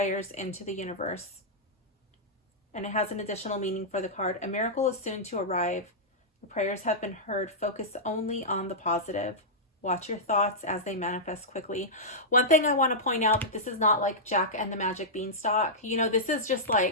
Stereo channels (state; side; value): normal; both; correlation -0.12